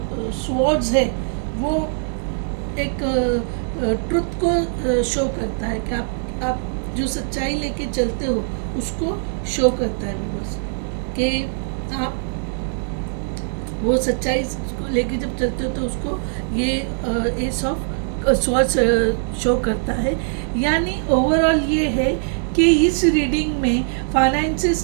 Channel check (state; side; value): silent; left; digital silence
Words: स्वॉर्ड्स है वो एक ट्रुथ को शो करता है कि आप जो सच्चाई लेके चलते हो उसको शो करता है बस, कि आप वो सच्चाई को लेके जब चलते हो तो उसको ये एस ऑफ स्वॉर्ड्स शो करता है। यानी ओवरऑल ये है कि इस रीडिंग में फाइनेंसेस